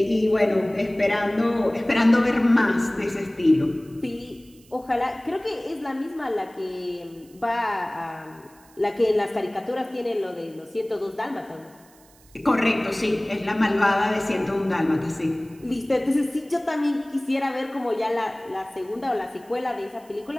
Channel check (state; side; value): noise; right; hiss, 28 dB below the sound